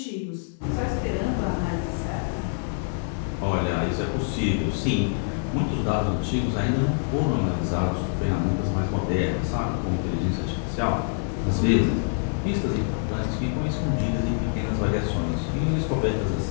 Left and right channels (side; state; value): right; silent; digital silence